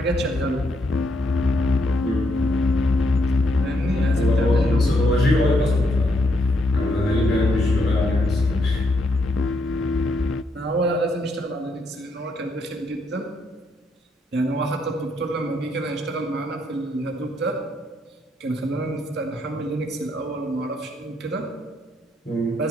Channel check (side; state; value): both; normal; correlation 0.76